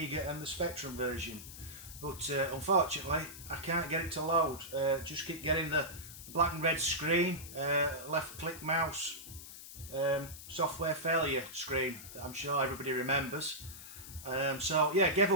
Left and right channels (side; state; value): left; noise; hiss, 14 dB below the sound